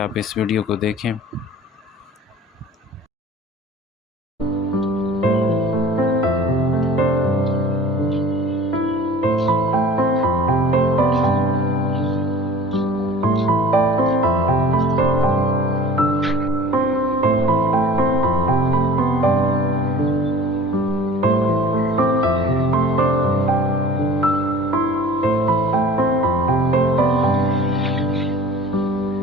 इस वीडियो को देखें।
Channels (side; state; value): both; normal; correlation 0.45